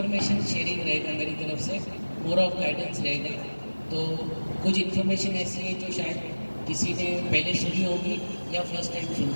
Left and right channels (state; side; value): inverted; both; correlation -1.00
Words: शेयरिंग रहेगा मेरी तरफ से, मोर ऑफ गाइडेंस रहेगा। तो कुछ इन्फॉर्मेशन ऐसी है जो शायद किसी ने पहले सुनी होगी या फर्स्ट टाइम